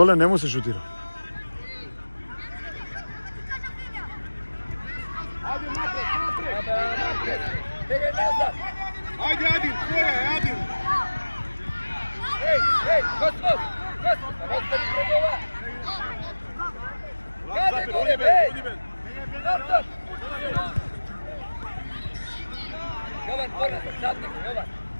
не му се шутира. Бегай назад! Ajde, Adin, tvoja je, Adin. Ej, Kosmo! Kosmo, ostavi pred ova! Kade Zafir, gore, odi ben, bej! odi ben. Nazad! Jovan, ponazad, zadnji, Jovan!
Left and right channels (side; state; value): both; inverted; correlation -1.00